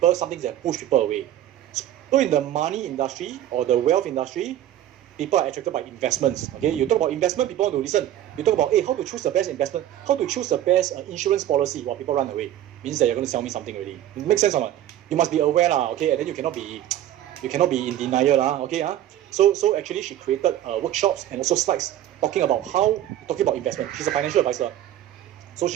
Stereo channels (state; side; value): quieter; left; 12.3 dB